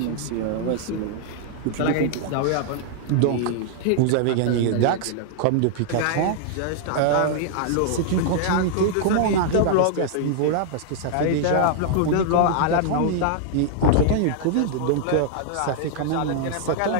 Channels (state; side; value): different; both; correlation -0.01